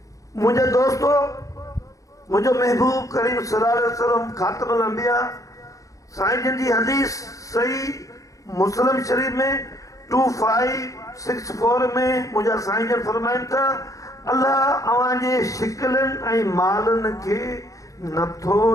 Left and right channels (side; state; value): right; late; 0.16 ms